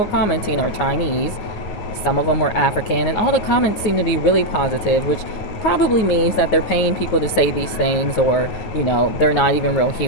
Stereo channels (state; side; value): late; right; 9.5 ms